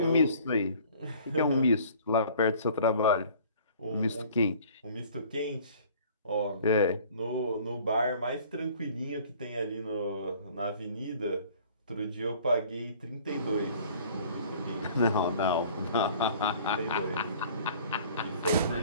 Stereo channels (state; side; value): inverted; both; correlation -0.51